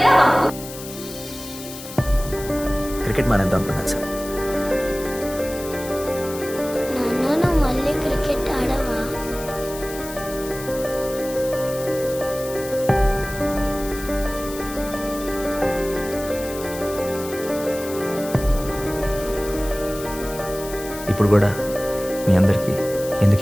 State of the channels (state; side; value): noise; left; hiss, 13 dB below the sound